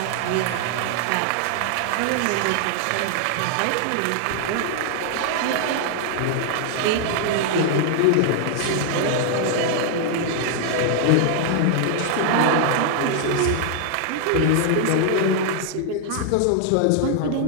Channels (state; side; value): different; both; correlation 0.00